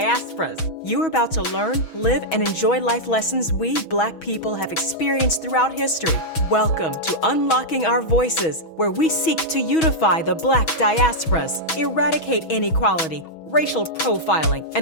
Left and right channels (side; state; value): right; late; 6.2 ms